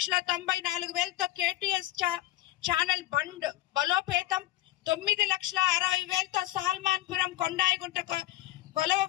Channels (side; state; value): right; quieter; 15.6 dB